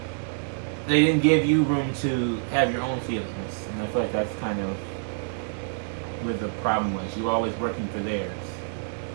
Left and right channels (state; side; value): silent; left; 60 dB below the other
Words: they didn't give you room to have your own feelings, and I feel like that's kind of where the problem was. You were always working for theirs.